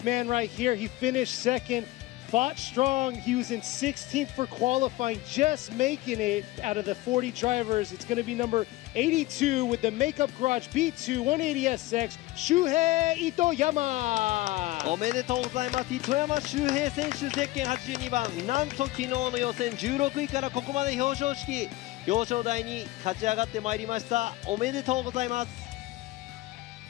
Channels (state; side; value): quieter; right; 18.4 dB